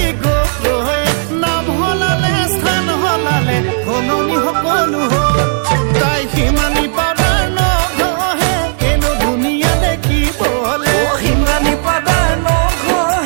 সলনি সকলো হ'ল তাই সিমানি পাউডাৰ নঘহে এনে ধুনীয়া দেখিবলে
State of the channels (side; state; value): left; silent; 71 dB below the other